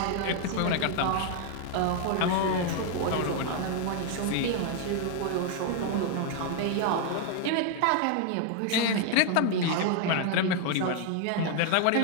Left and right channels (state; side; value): different; both; correlation 0.00